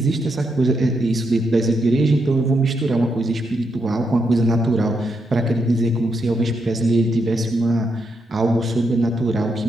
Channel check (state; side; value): normal; both; correlation 0.81